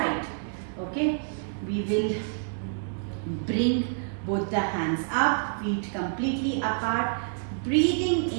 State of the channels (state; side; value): silent; left; digital silence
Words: Okay, we will bring both the hands up, feet completely apart. Breathing